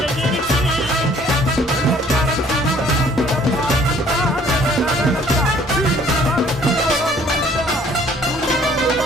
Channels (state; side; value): normal; both; correlation 0.58